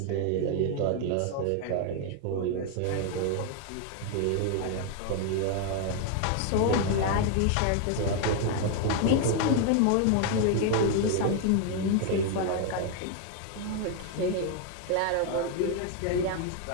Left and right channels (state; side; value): different; both; correlation 0.01